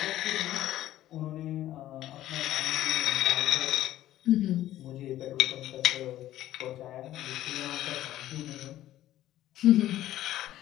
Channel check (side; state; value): right; quieter; 13.7 dB